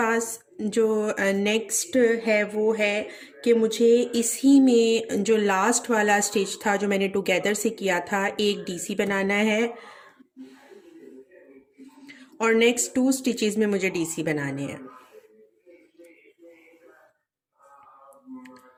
जो नेक्स्ट है वो है कि मुझे इसी में जो लास्ट वाला स्टिच था जो मैंने टुगेदर से किया था, एक डीसी बनाना है और नेक्स्ट 2 स्टिचेस में मुझे डीसी बनाने हैं।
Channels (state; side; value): identical; both; correlation 1.00